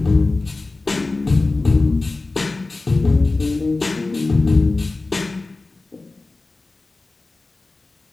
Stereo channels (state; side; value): quieter; right; 3.4 dB